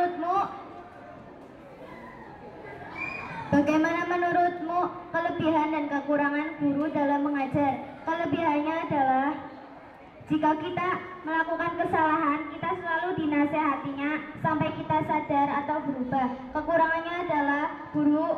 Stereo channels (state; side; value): identical; both; correlation 1.00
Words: Bagaimana menurutmu kelebihan dan kekurangan guru dalam mengajar? Kelebihannya adalah jika kita melakukan kesalahan, kita selalu dinasehatinya sampai kita sadar atau berubah. Kekurangannya adalah